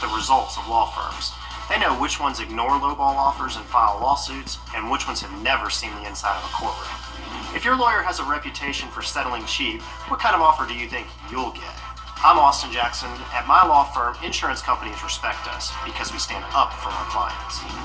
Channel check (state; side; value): identical; both; correlation 1.00